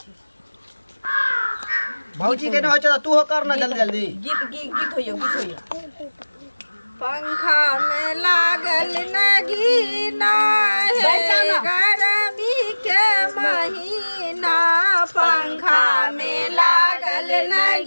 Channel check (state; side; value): inverted; both; correlation -1.00